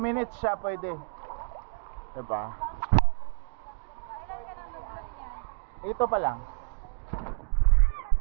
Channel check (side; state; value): left; silent; digital silence